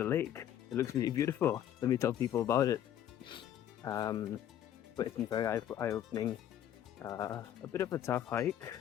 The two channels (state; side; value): quieter; right; 10.8 dB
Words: lake, it looks really beautiful, let me tell people about it. But it's been very eye-opening. A bit of a tough hike,